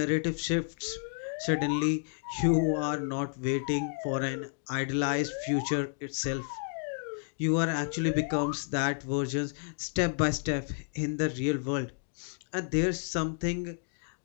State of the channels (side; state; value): right; silent; digital silence